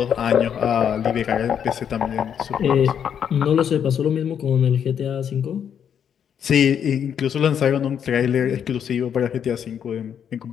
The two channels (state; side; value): quieter; right; 8.4 dB